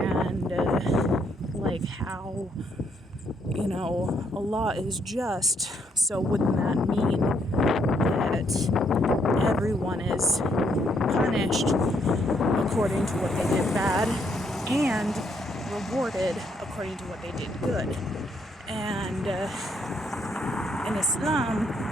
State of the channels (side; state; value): both; normal; correlation 0.73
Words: how Allah is just, so wouldn't that mean that everyone is punished according to what they did bad and rewarded according to what they did good? And in Islam,